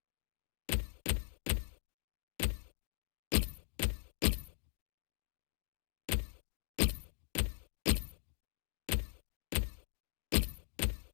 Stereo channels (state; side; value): silent; right; 50 dB below the other